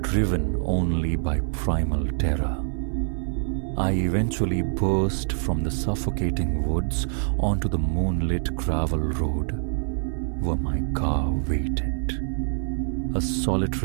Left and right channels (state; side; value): silent; left; 57 dB below the other